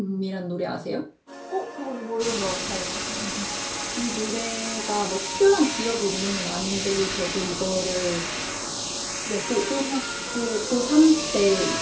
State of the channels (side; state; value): both; identical; correlation 1.00